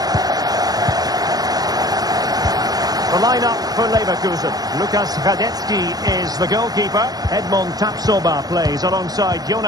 The lineup for Leverkusen. Lukas Radetzky is the goalkeeper. Edmond Tapsoba plays alongside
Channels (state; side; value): late; left; 0.19 ms